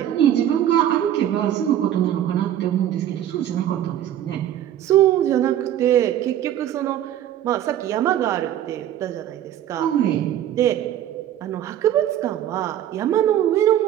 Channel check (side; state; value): left; quieter; 11.4 dB